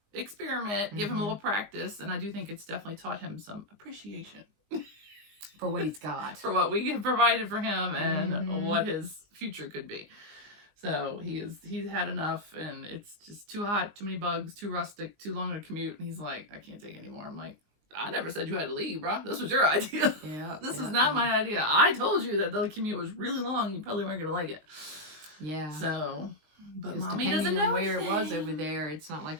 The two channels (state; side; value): late; left; 19 ms